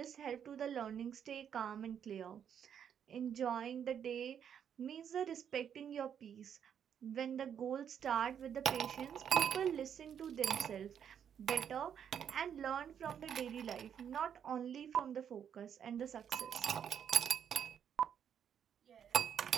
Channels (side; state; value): left; quieter; 8.5 dB